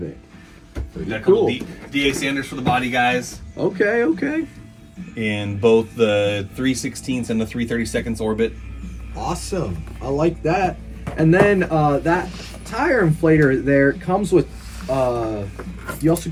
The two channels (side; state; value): both; identical; correlation 1.00